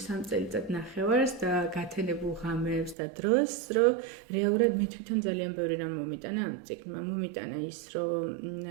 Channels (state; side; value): drops out; left; at 3.0 s